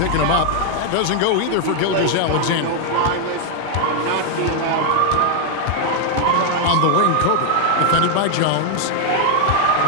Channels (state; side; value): different; both; correlation 0.00